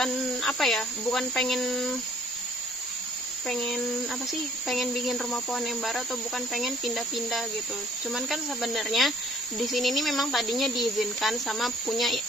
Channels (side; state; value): both; normal; correlation 0.59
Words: apa ya, bukan pengen pengen apa sih, pengen bikin rumah pohon yang baru atau bukan pengen pindah-pindah gitu. Cuman kan sebenarnya di sini nih memang tadinya diizinkan sama punya